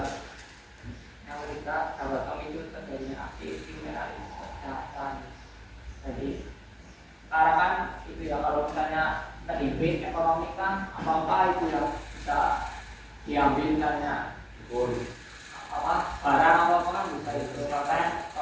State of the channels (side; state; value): both; identical; correlation 1.00